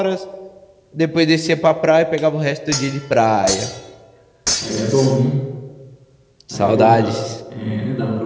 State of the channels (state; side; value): identical; both; correlation 1.00